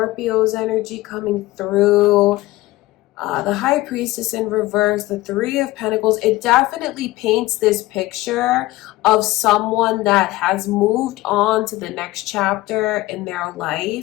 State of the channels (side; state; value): right; quieter; 18.1 dB